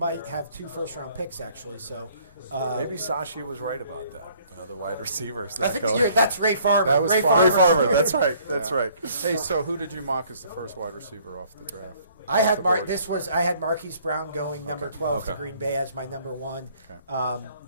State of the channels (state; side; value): inverted; both; correlation -0.60